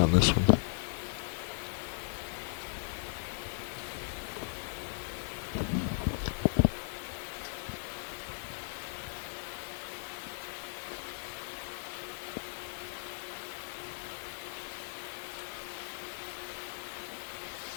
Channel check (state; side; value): silent; right; digital silence